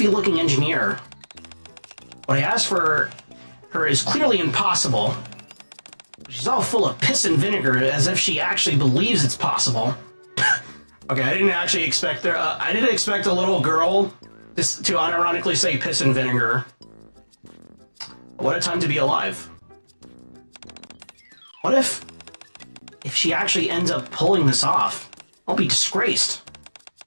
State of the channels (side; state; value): both; inverted; correlation -1.00